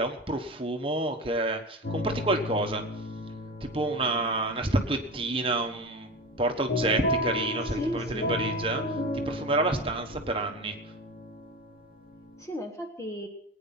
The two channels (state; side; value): normal; both; correlation 0.27